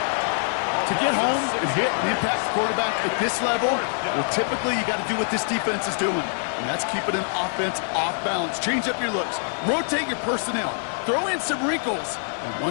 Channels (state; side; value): silent; right; 60 dB below the other